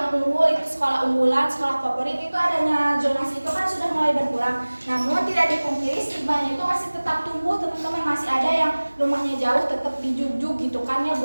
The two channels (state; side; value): inverted; both; correlation -1.00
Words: unggul, itu sekolah unggulan, sekolah favorit, itu adanya zonasi itu kan sudah mulai berkurang. Namun tidak dipungkiri stigmanya itu masih tetap tumbuh teman-teman, masih ada yang rumahnya jauh tetap dijug-jug gitu kan ya